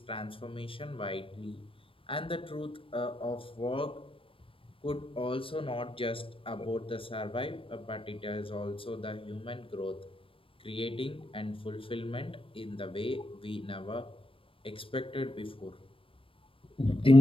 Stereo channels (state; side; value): late; right; 0.26 ms